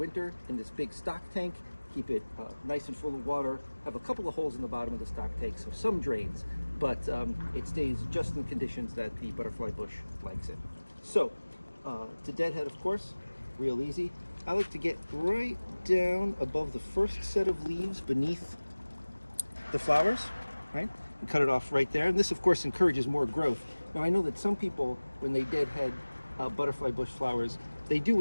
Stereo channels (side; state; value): both; inverted; correlation -1.00